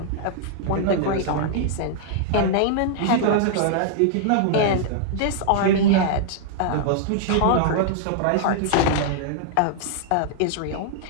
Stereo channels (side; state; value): both; different; correlation -0.01